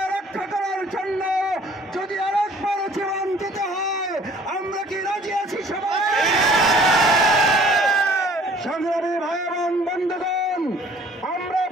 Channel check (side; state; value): both; normal; correlation 0.54